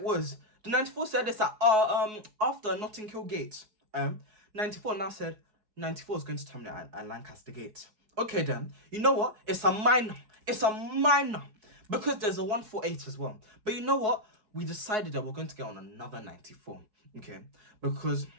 was? The 94 said this at after Notting Hill Gate. 94 now said 94 is going to terminate at Lancaster Gate. Okay then, you know what? It's a minor, because there's a 148 as well. But you know what? We decided that we're going to get on another 94, okay? Because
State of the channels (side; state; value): left; late; 4.7 ms